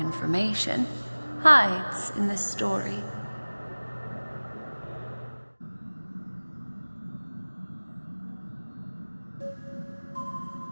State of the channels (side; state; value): both; inverted; correlation -1.00